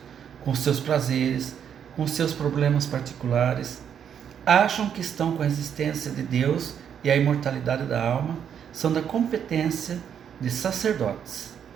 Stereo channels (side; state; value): left; quieter; 8.4 dB